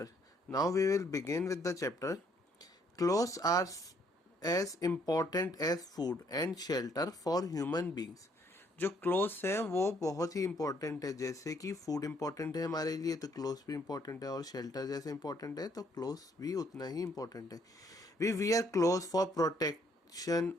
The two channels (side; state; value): both; normal; correlation 0.67